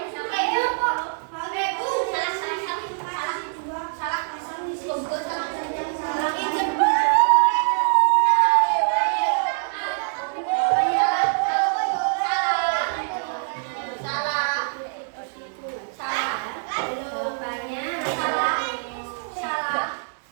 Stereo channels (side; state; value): left; silent; digital silence